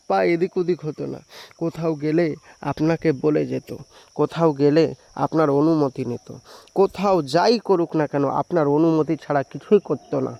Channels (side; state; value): both; identical; correlation 1.00